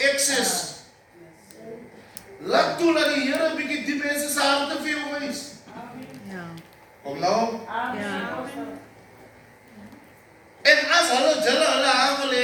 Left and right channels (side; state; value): both; identical; correlation 1.00